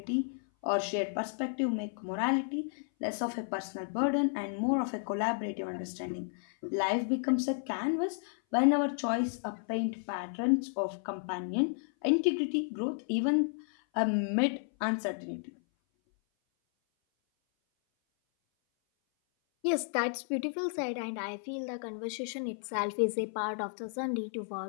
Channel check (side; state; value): right; silent; 56 dB below the other